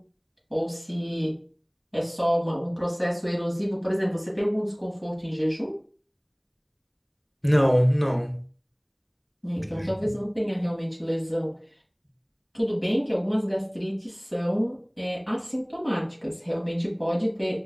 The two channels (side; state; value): both; identical; correlation 1.00